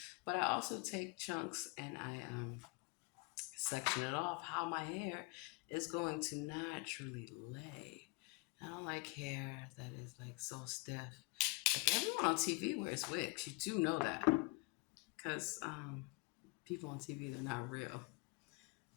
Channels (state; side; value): quieter; right; 28.9 dB